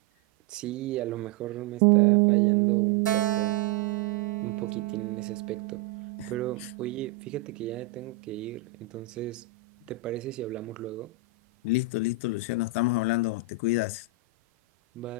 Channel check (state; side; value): quieter; left; 5.9 dB